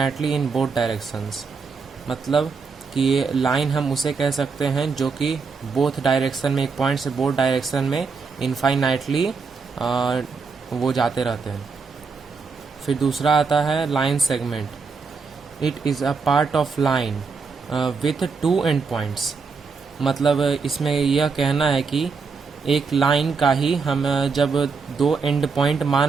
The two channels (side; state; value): left; quieter; 5.0 dB